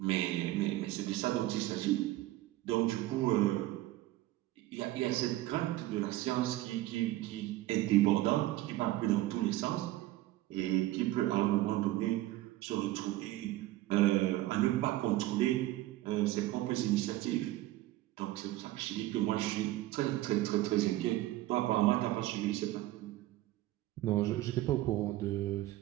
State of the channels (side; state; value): left; quieter; 16.0 dB